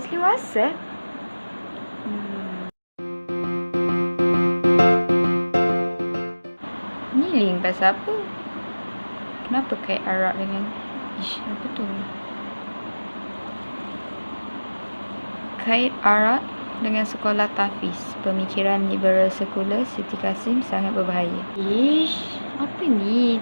Wasef? Ni link pasal apa? Kenapa kait Arab dengan... apa tu? Kait Arab dengan sekolah tahfiz. Pemikiran liberal sekular Siti Kasim sangat berbahaya. Apa ni?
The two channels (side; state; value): both; inverted; correlation -1.00